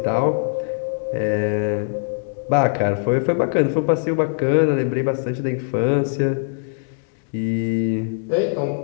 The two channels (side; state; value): right; silent; digital silence